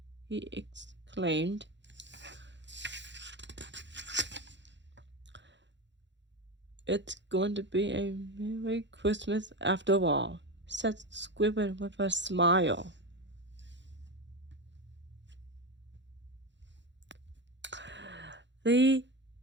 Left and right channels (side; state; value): left; late; 0.52 ms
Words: he exclaimed. It's going to be a Merry Christmas after all, said Squidward with a smile. The